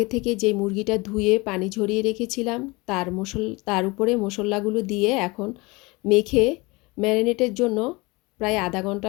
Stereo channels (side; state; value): right; quieter; 24.7 dB